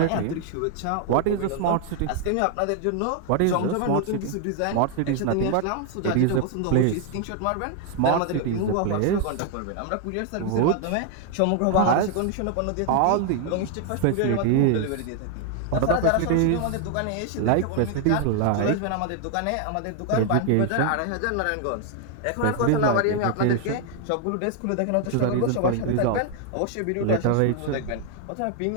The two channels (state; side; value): different; both; correlation 0.00